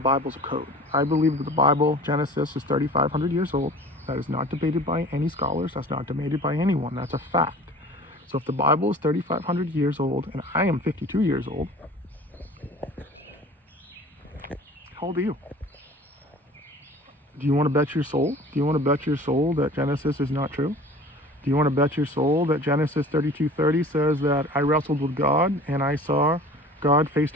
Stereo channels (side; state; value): both; normal; correlation 0.43